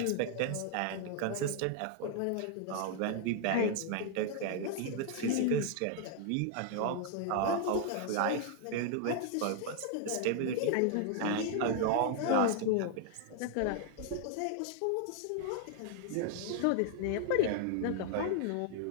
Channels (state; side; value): different; both; correlation 0.00